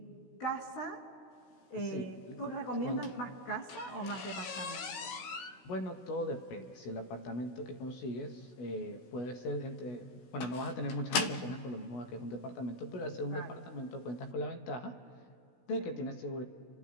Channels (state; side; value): late; right; 16 ms